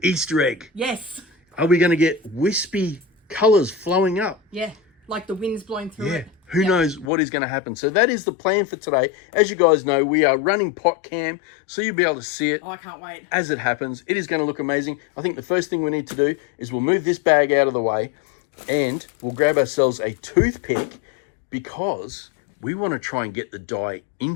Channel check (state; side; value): drops out; right; at 7.1 s